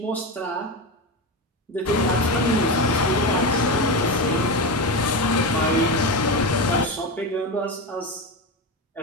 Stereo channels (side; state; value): both; normal; correlation 0.19